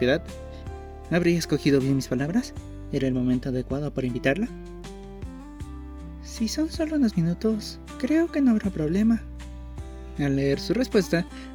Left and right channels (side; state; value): both; identical; correlation 1.00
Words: ¿Habría escogido bien mis palabras? ¿Era el momento adecuado para invitarla? Si son solo unos minutos, creo que no habrá problema. Al leer su respuesta,